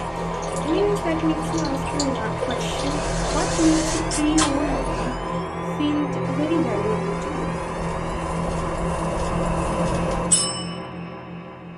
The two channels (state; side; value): identical; both; correlation 1.00